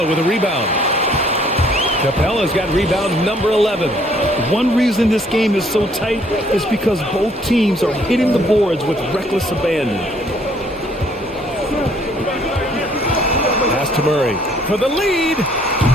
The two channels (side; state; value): both; normal; correlation 0.63